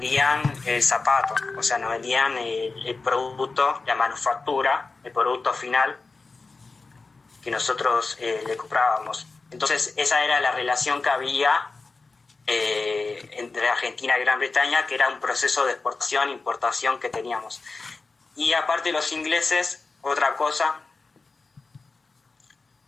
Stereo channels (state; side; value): quieter; right; 4.0 dB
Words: el zapato, o sea, nos vendían el producto, la manufactura, el producto final que nosotros le comprábamos. Entonces esa era la relación que había entre Argentina y Gran Bretaña, que era un proceso de exportación e importación que teníamos. Y aparte los ingleses, otra cosa,